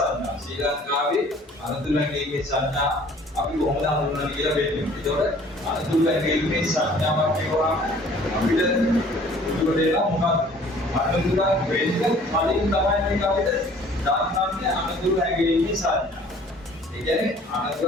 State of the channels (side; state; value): both; normal; correlation 0.53